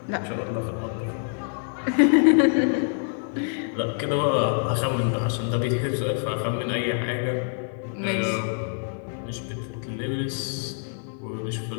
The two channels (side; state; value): right; silent; digital silence